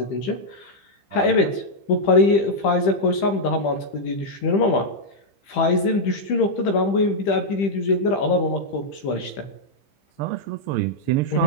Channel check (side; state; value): right; late; 15 ms